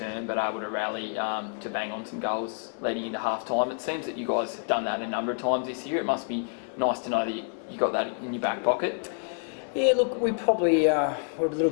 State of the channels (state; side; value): silent; right; digital silence